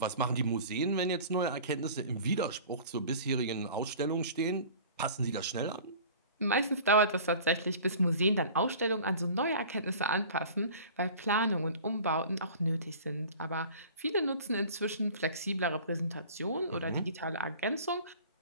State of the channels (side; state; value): both; inverted; correlation -0.43